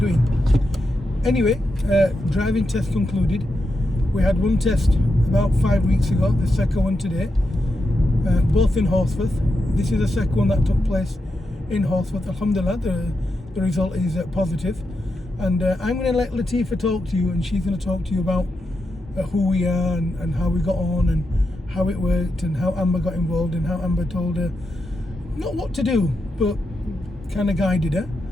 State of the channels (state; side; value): normal; both; correlation 0.86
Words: Anyway, driving test concluded. We had one test about 5 weeks ago, the second one today, both in Horsforth. This is the second one that took place in Horsforth. Alhamdulillah, the result is positive. And I'm going to let Latifa talk to you, and she's going to talk to you about who we are and how we got on and how it worked and how Amber got involved and how Amber told her not what to do, but kind of guided her,